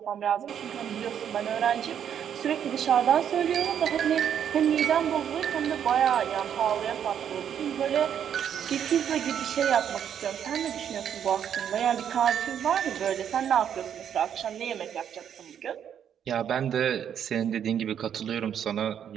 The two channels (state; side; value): quieter; left; 8.9 dB